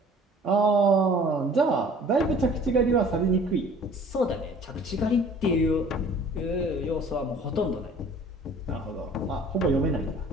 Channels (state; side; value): normal; both; correlation 0.50